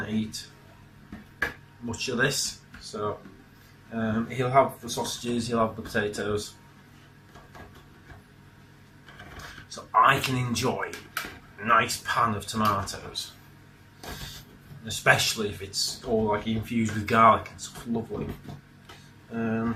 to eat much of this. So he'll have the sausages, he'll have the potatoes, so I can enjoy a nice pan of tomatoes, especially if it's all like infused with garlic and stuff. Lovely.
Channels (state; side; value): identical; both; correlation 1.00